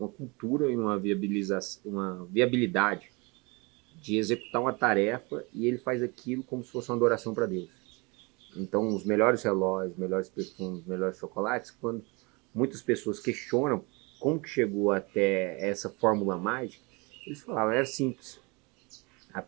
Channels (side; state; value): left; quieter; 28.1 dB